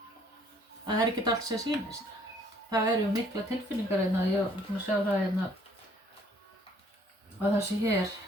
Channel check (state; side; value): normal; both; correlation 0.61